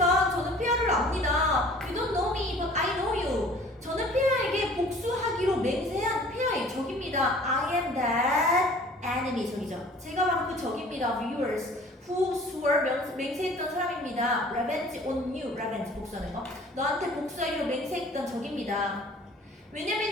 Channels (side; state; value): both; normal; correlation 0.50